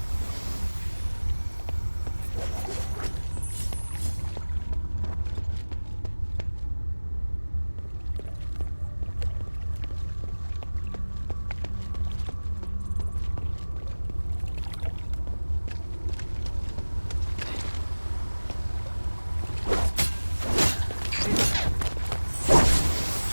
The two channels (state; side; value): inverted; both; correlation -1.00